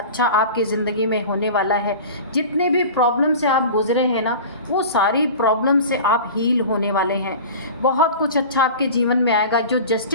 आपकी ज़िंदगी में होने वाला है। जितने भी प्रॉब्लम से आप गुजरे हैं ना, वो सारी प्रॉब्लम से आप हील होने वाले हैं। बहुत कुछ अच्छा आपके जीवन में आएगा। जो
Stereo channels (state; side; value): inverted; both; correlation -0.36